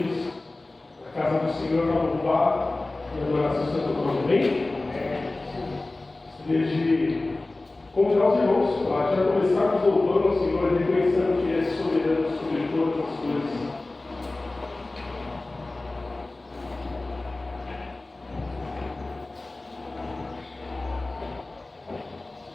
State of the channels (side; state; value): right; quieter; 3.0 dB